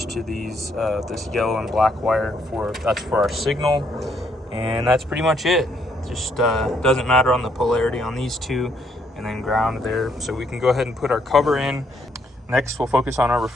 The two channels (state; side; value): normal; both; correlation 0.71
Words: to these this yellow and black wire that's for our signal, and that's pretty much it. Just doesn't matter on the polarity on these two, and then ground there. So we can go ahead and put our cover in. Next, we'll focus on our